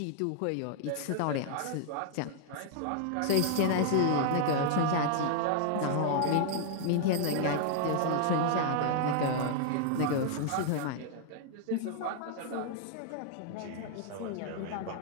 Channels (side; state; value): both; different; correlation 0.00